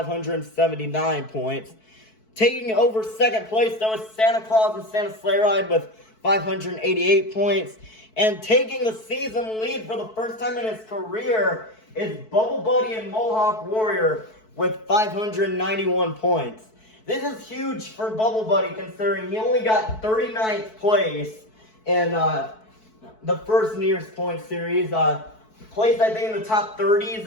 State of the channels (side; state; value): right; late; 4.6 ms